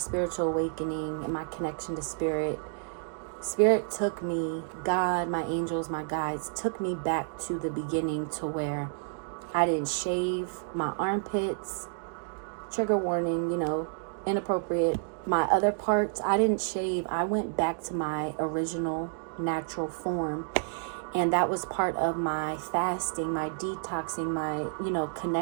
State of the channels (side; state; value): left; silent; digital silence